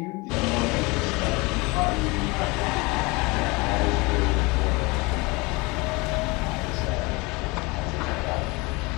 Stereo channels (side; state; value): right; quieter; 25.3 dB